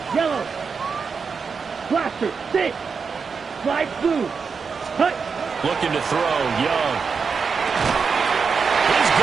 yellow. Blaster, 6. Slide blue. Touch. Looking to throw, Young. He's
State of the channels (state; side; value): quieter; left; 5.5 dB